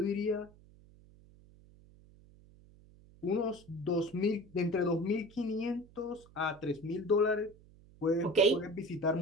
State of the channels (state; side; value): noise; right; hum, 25 dB below the sound